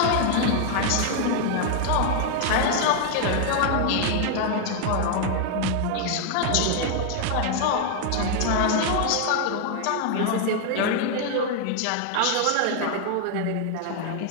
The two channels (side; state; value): both; different; correlation 0.00